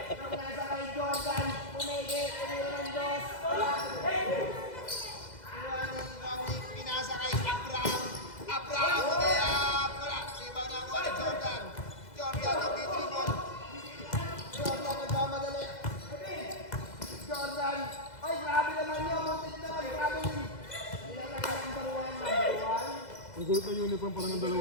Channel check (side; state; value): right; late; 2.0 ms